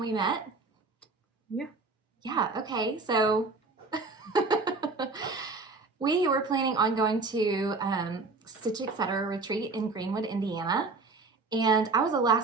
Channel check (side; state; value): left; quieter; 3.9 dB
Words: met? Yeah. Yeah, okay. So, we were planning on going to Stitch Etc. retreat in Greenwood, Indiana. And I was a